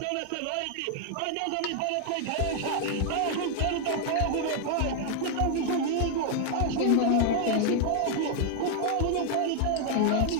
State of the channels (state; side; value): different; both; correlation 0.00